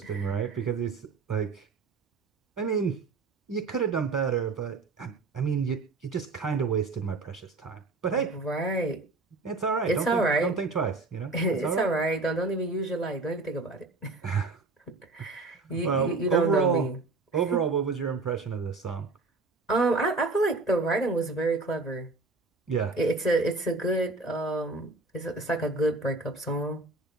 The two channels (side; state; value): left; quieter; 3.5 dB